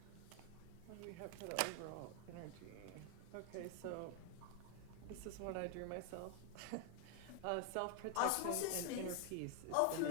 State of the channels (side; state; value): both; different; correlation 0.00